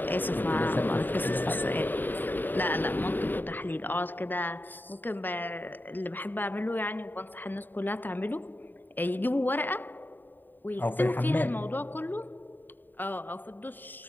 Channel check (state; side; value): late; right; 0.091 ms